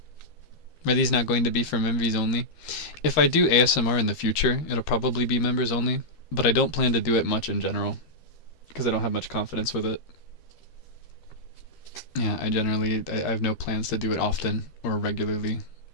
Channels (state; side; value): late; right; 12 ms